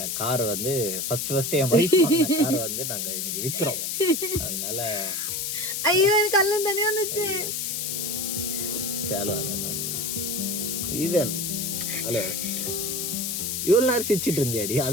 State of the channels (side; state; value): left; noise; hiss, 2 dB below the sound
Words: கார் வந்து ஃபர்ஸ்ட் என் வைஃப் கார் வந்து நாங்க இன்னைக்கு விற்கிறோம். அதனால ஐயோ எனக்கு கல்லம் தண்ணி வந்துச்சு. சேலோ அதெல்லாம் இது ஹலோ, இவ்வளவு நேரம் சிரிச்சிட்டு இருந்தியாடி,